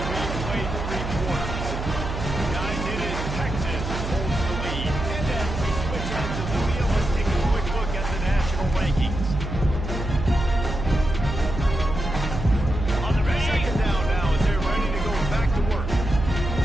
we play 3 quarters. Guys, it is Texas holds the lead. And as we switch out to the wheel, let's take a quick look at the national rankings. On the ready. 2nd down now as they're ready to go back to work.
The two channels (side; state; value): right; noise; hum, 5 dB below the sound